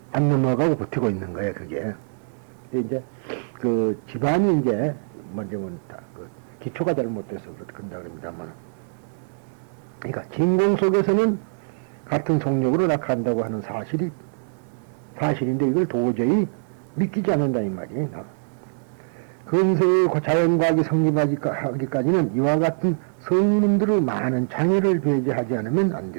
안 넘어가고 버티고 있는 거예요. 그게 이제 그 집안이 이제 먼저 그 기초가 잘못돼서 그런다 그럽니다만, 그러니까 진공 속에서는 같은 속력으로 낙한다고 하는 사실인데 이걸 도저히 믿기지 않는다 이 말이에요. 근세의 자연과학이 성립하기까지는 이와 같은 성인들의 많은 장애를 배제하지 않으면 안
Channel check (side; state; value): left; silent; 61 dB below the other